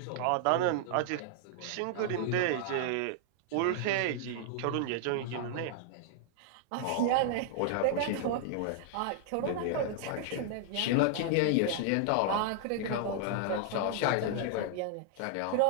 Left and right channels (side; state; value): both; different; correlation -0.01